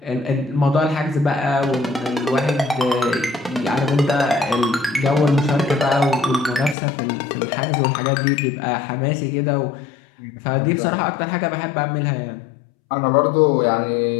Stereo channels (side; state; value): right; drops out; at 6.8 s